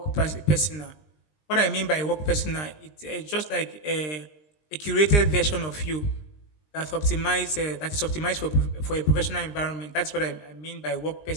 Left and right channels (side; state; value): right; late; 20 ms